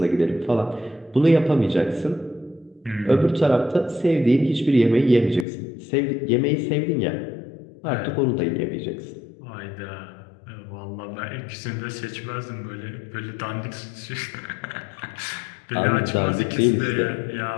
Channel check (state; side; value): drops out; right; at 5.5 s